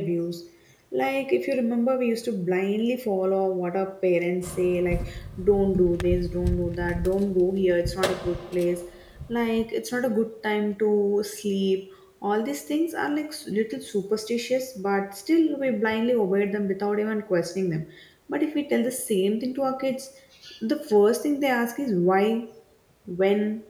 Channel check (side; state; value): both; identical; correlation 1.00